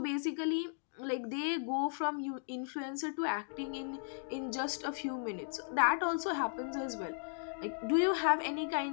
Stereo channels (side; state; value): right; silent; digital silence